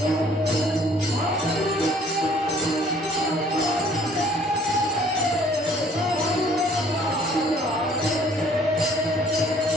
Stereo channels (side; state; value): both; normal; correlation 0.57